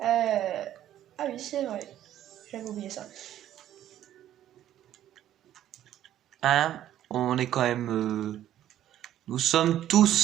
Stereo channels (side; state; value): left; quieter; 11.9 dB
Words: Ah oui, c'est vrai. J'avais oublié ça. Hein, on est quand même... Nous sommes